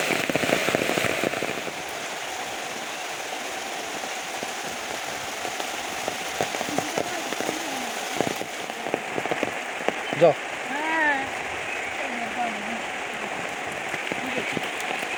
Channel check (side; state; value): both; identical; correlation 1.00